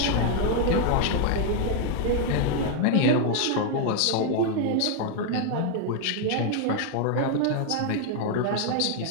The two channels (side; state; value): both; different; correlation 0.00